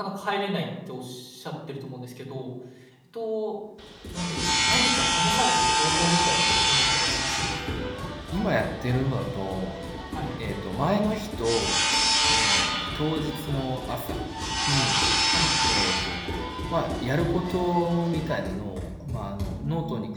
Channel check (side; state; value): both; identical; correlation 1.00